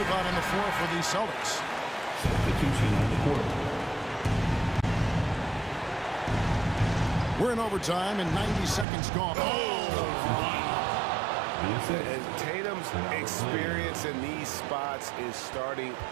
out on the floor for the Celtics. Substitution on the court. We're in overtime and 90 seconds gone. And Tatum's experience in these spots is starting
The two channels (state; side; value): drops out; left; at 8.8 s